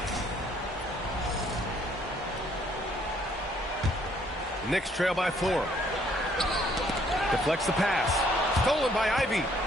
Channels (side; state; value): both; normal; correlation 0.65